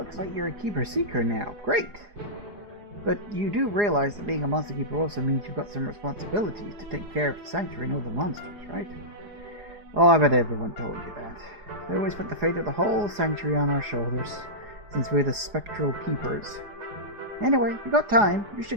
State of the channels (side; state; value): left; late; 4.8 ms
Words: like you're a keeper seeker now. Great. But you do realize that being a monster keeper also means you've got some responsibilities to take care of the sanctuary and all the monsters, right? Oh, I bet everyone told you that. They always put the fate of the whole sanctuary on our shoulders, since we're the spectral keepers. Anyway, you got time, you